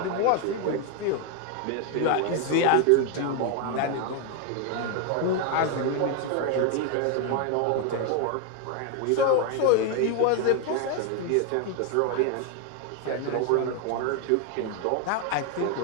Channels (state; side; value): different; both; correlation 0.01